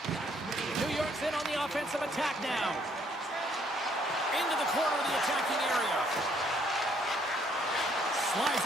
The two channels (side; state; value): both; normal; correlation 0.67